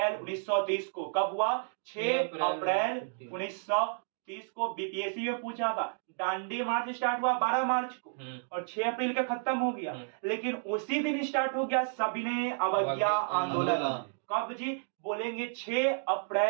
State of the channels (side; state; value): left; silent; digital silence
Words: 1930 को। कब हुआ, 6 अप्रैल 1930 को। बीपीएससी में पूछा था, दांडी मार्च स्टार्ट हुआ 12 मार्च को और 6 अप्रैल का खत्म हो गया, लेकिन उसी दिन स्टार्ट हो गया सविनय अवज्ञा आंदोलन। कब जी, बोलेंगे 6